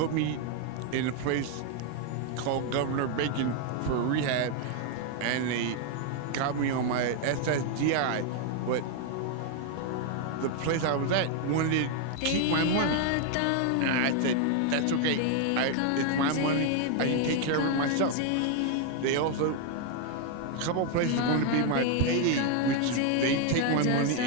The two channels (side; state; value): both; different; correlation 0.01